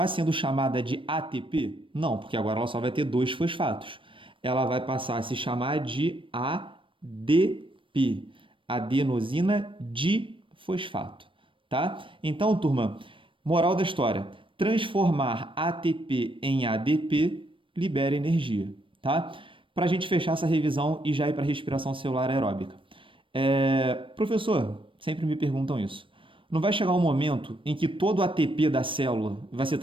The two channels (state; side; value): late; left; 0.25 ms